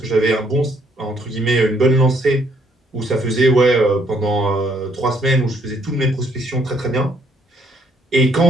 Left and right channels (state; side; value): normal; both; correlation 0.68